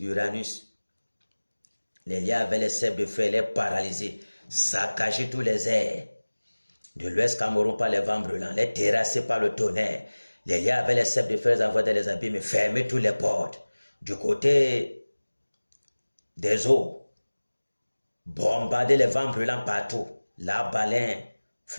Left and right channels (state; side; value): inverted; both; correlation -1.00